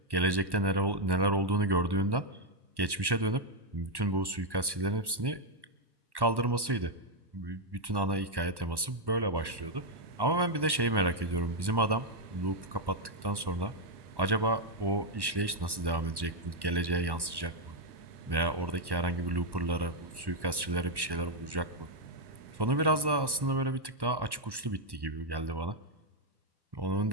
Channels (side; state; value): left; late; 1.1 ms